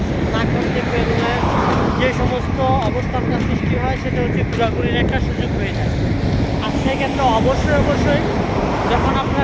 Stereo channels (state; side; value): identical; both; correlation 1.00